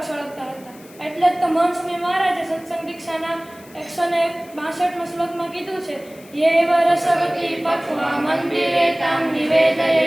સળગતા હતા. એટલે જ તો મહંત સ્વામી મહારાજે સત્સંગ દીક્ષાના 162માં શ્લોકમાં કીધું છે, યેવ રસવતી પક્વા મંદિરે તામ નિવેદયે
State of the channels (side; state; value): left; noise; hiss, 24 dB below the sound